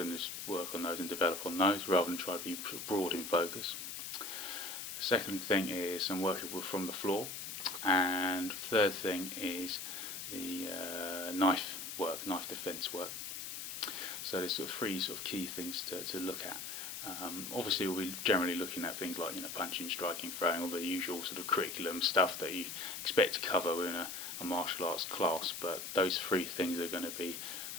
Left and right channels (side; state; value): left; noise; hiss, 7 dB below the sound